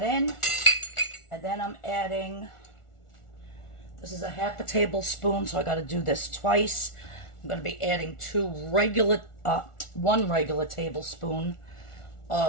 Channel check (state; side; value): late; right; 1.4 ms